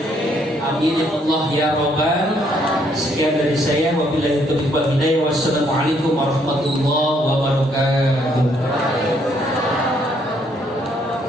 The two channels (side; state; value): both; normal; correlation 0.69